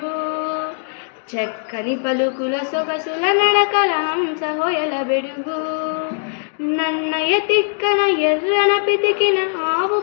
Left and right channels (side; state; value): right; silent; digital silence